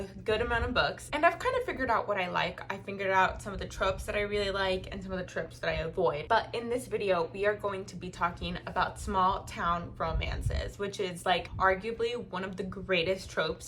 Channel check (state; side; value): identical; both; correlation 1.00